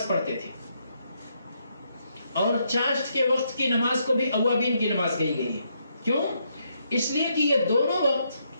پڑھتے تھے، اور چاشت کے وقت کی نماز کو بھی اوابین کی نماز کہی گئی ہے. کیوں؟ اس لیے کہ یہ دونوں وقت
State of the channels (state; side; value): inverted; both; correlation -0.77